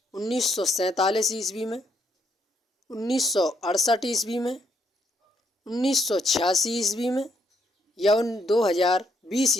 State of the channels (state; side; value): normal; both; correlation 0.73